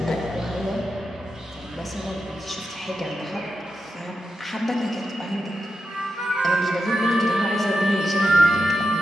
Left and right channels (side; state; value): both; normal; correlation 0.88